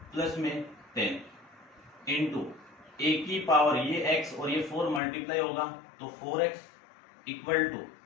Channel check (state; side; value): drops out; right; at 5.0 s